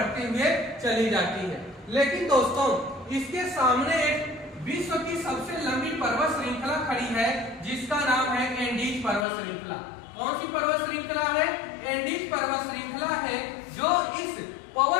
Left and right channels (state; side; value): drops out; right; at 9.2 s